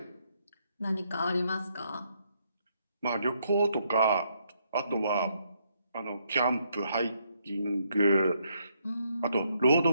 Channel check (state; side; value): inverted; both; correlation -0.74